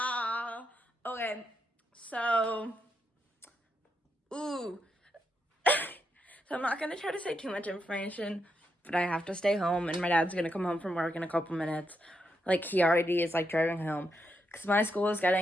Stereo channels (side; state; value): both; normal; correlation 0.82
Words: Okay, so, so I'm not gonna try to say too much information, but I have to stay home, and my dad's gonna come home from work in a couple minutes. Like, he already is, like, driving home, because my school is